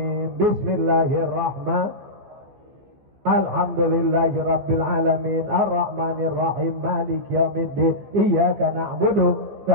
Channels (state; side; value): late; left; 14 ms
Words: Bismillahirrahmanirrahim. Alhamdulillahi rabbil alamin, arrahmanir rahim, maliki yaumiddin. Iyyaka na'budu